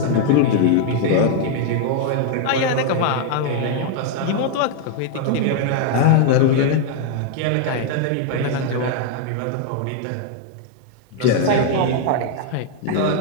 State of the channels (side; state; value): both; different; correlation 0.00